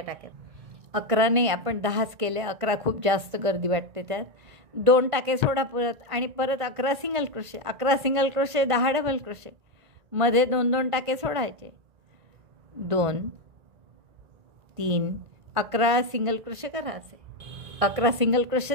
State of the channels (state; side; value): late; left; 1.5 ms